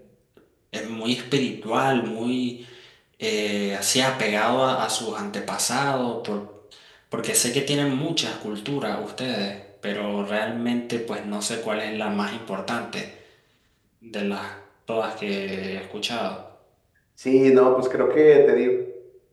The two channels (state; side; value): identical; both; correlation 1.00